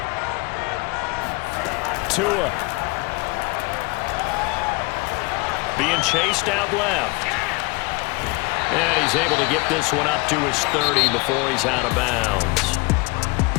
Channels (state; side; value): quieter; right; 25.8 dB